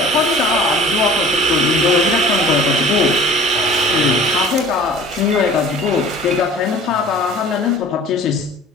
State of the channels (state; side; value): normal; both; correlation 0.46